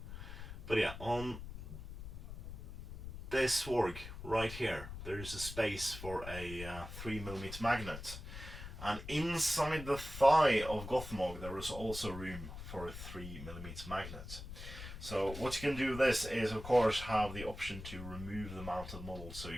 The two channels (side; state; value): left; noise; rumble, 10 dB below the sound